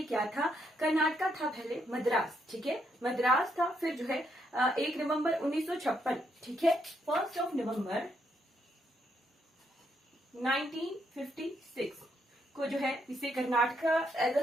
क्या था? कर्नाटका था पहले मद्रास। ठीक है, मद्रास था। फिर जो है 1 नवंबर 1956, ठीक है, 1 नवंबर 1956 को जो है इसे कर्नाटका एज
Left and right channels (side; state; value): both; normal; correlation 0.76